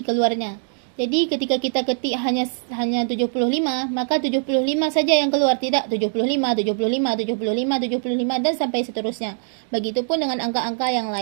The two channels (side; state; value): left; silent; digital silence